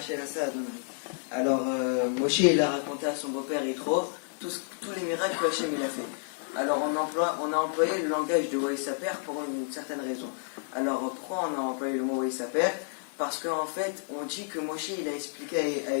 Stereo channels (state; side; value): silent; right; digital silence